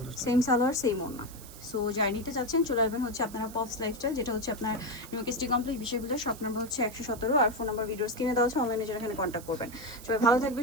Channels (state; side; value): noise; right; hiss, 17 dB below the sound